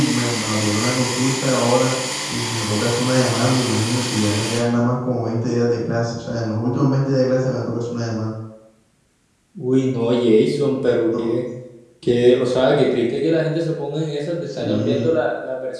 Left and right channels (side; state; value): both; identical; correlation 1.00